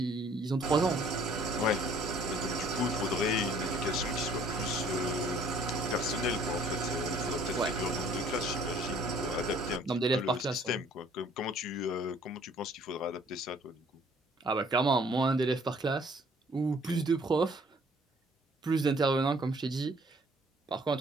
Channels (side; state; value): both; normal; correlation 0.58